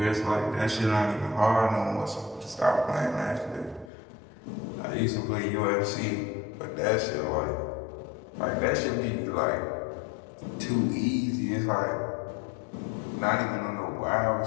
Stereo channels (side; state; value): right; drops out; at 3.9 s